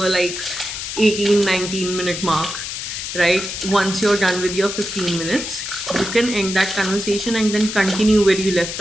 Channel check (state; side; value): noise; left; hiss, 6 dB below the sound